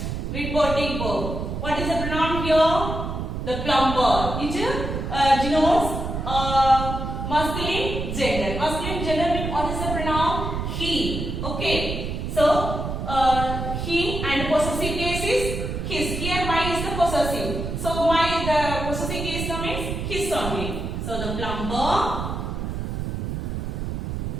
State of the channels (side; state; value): right; noise; rumble, 4 dB below the sound